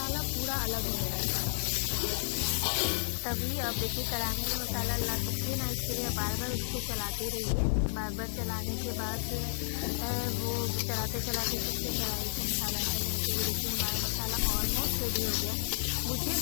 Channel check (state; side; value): silent; right; 57 dB below the other